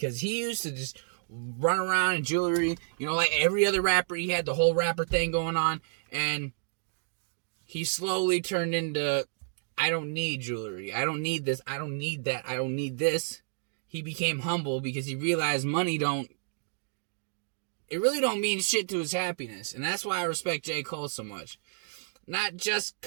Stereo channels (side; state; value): left; silent; digital silence